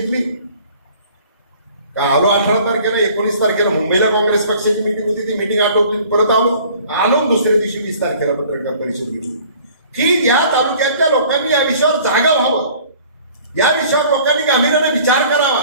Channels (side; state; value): both; inverted; correlation -0.51